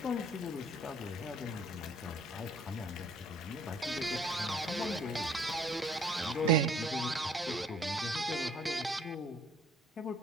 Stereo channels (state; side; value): normal; both; correlation 0.57